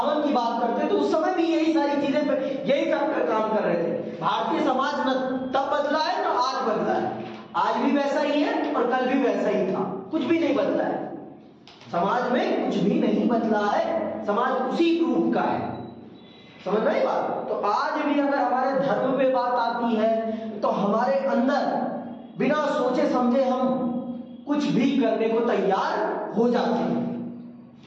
की बात करते हैं तो उस समय भी यही सारी चीजें, यही फैक्टर काम कर रहे थे। भारतीय समाज न तब बदला है न आज बदला है। आज भी वैसा ही है और कल भी वैसा ही था, कुछ भी नहीं बदला है। समाज में कुछ भी नहीं बदला है, समाज उसी रूप का है। समझ रहे बात? तो आज भी अगर हमारे धर्म पे बात आती है तो हमारे अंदर बिना सोचे समझे हम कुछ भी करने को तैयार हो जाते हैं।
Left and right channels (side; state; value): both; identical; correlation 1.00